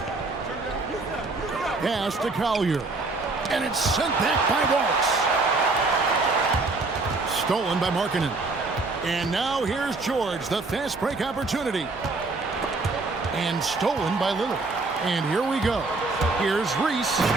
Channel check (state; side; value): quieter; left; 3.5 dB